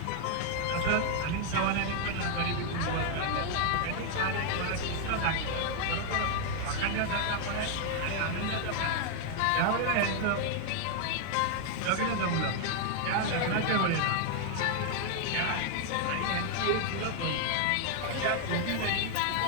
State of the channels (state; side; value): different; both; correlation 0.00